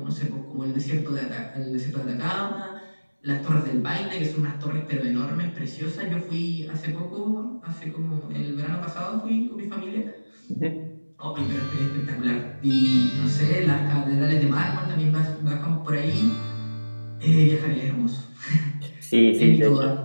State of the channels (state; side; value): inverted; both; correlation -1.00